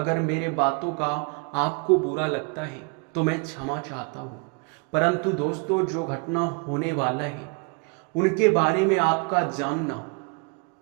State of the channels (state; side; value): quieter; left; 34.1 dB